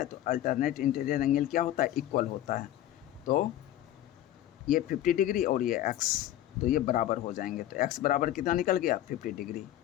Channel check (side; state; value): right; quieter; 13.1 dB